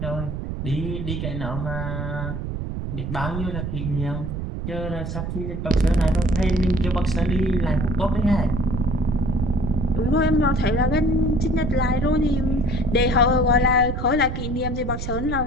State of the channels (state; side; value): noise; right; rumble, 4 dB below the sound